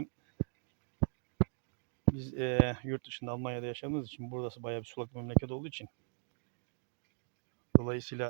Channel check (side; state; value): left; silent; 53 dB below the other